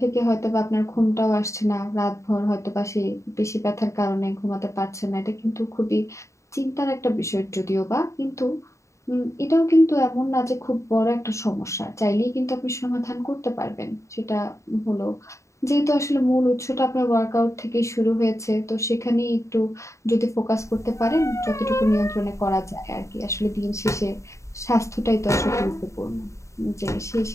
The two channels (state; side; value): late; right; 0.14 ms